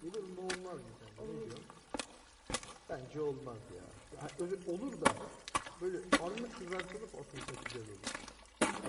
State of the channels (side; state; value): both; identical; correlation 1.00